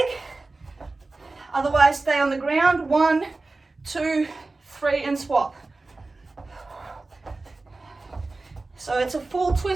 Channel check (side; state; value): left; quieter; 3.4 dB